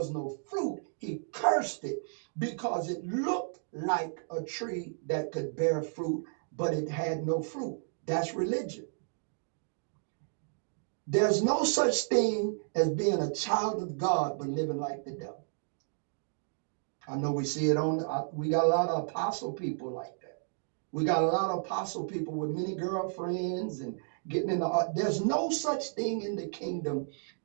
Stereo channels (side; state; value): left; silent; digital silence